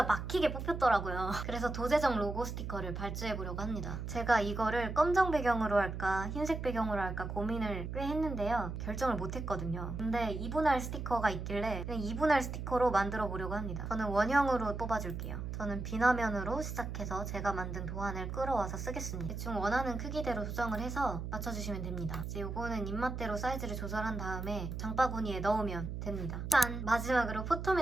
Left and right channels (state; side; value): noise; right; hum, 5 dB below the sound